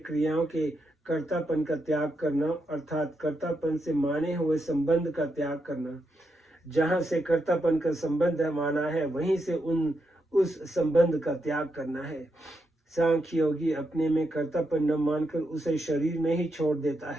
के कर्तापन का त्याग करना, अर्थात कर्तापन से माने हुए संबंध का त्याग करना। जहाँ से कर्तापन का संबंध माना है, वहीं से उस संबंध का त्याग करना है। सांख्य योगी अपने में कर्तापन न मानकर उसे शरीर में ही छोड़ देता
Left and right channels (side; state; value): both; normal; correlation 0.83